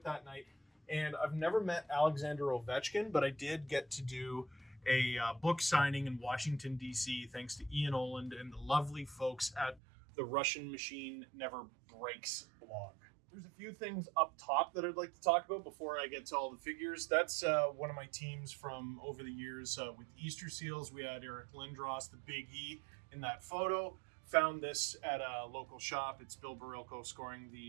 that night. And I've never met Alexander Ovechkin, but I did get to do a book signing in Washington, D.C., thanks to Ian Oland and the lovely folks at the Russian Machine Never Breaks blog. There's a few things up top that I'd like to talk about before I get to all the figures. That's one of my teams from over the years with Easter Seals. We had Eric Lindros, the Big E, in that photo. Found this at a local shop. It's Bill Barilko scoring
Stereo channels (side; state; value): left; drops out; at 9.8 s